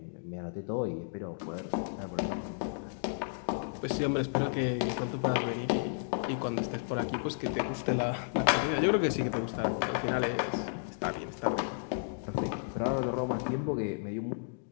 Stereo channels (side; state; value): right; silent; digital silence